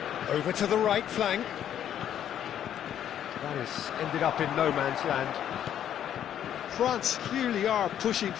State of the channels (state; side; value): quieter; right; 10.2 dB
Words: Over to the right flank. That has ended up in no man's land. France clearly are pushing